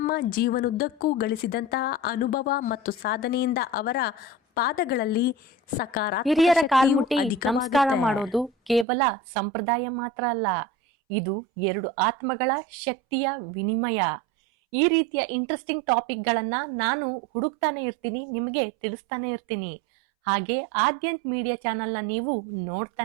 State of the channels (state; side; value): drops out; left; at 8.8 s